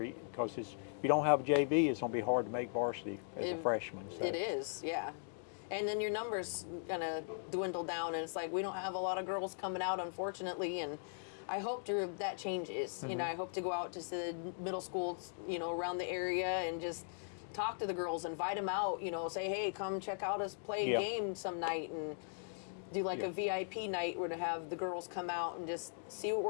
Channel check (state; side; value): silent; right; digital silence